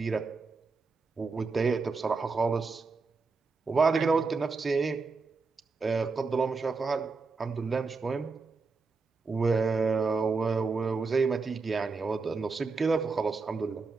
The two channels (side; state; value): left; quieter; 4.3 dB